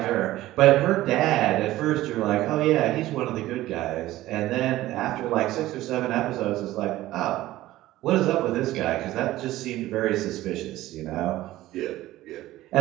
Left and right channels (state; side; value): quieter; left; 15.9 dB